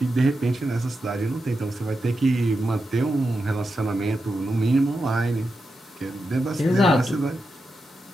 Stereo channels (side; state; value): both; normal; correlation 0.88